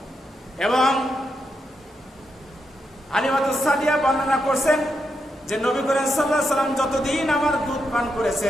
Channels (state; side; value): normal; both; correlation 0.83